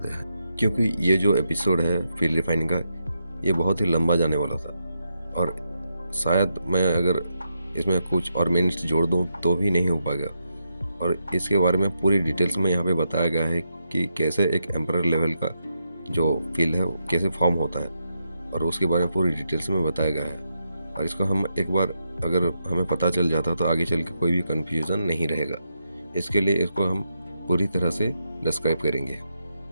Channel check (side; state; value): both; inverted; correlation -0.83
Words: है, क्योंकि ये जो एपिसोड है फील्ड रिफाइनिंग का ये बहुत ही लंबा जाने वाला था, और शायद मैं अगर इसमें कुछ और मिनट्स जोड़ दूँ तो भी नहीं हो पाएगा। और इसके बारे में पूरी डिटेल्स में यहाँ पे बताया गया है कि कैसे एक एम्परर लेवल का जो फील्ड है वो कैसे फॉर्म होता है, और उसके बारे में पूरी डिटेल्स में बताया गया है। और इसको हम एक बार अगर हमें पता चल जाता तो आगे चल के कोई भी कन्फ्यूज़न नहीं रहेगा। इसके लिए इसको हम पूरी तरह से डिस्क्राइब करेंगे।